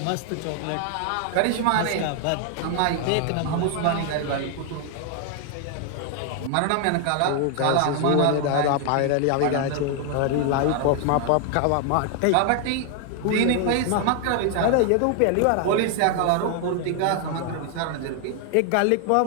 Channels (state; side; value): different; both; correlation 0.00